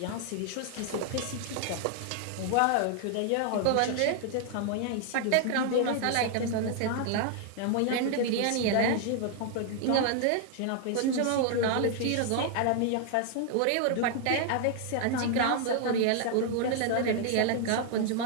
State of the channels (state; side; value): different; both; correlation 0.00